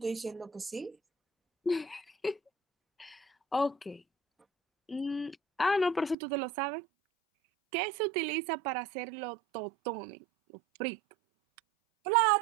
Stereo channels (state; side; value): drops out; left; at 6.2 s